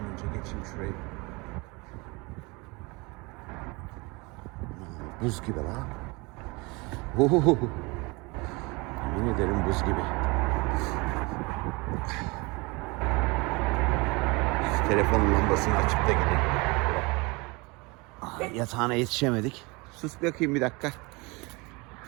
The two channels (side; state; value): left; quieter; 26.3 dB